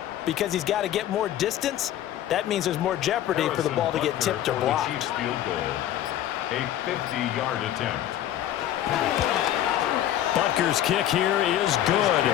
because he's got to get more distance. That means there's more jeopardy for the ball to get tipped or blocked. A 50-yard attempt. Butker's kick here is good.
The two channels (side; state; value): right; quieter; 11.9 dB